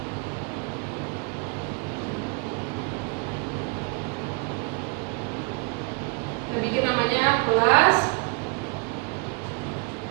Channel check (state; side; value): quieter; left; 33.2 dB